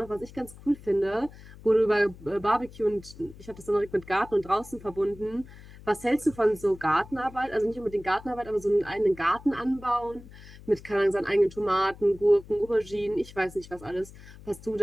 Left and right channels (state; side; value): noise; left; hum, 19 dB below the sound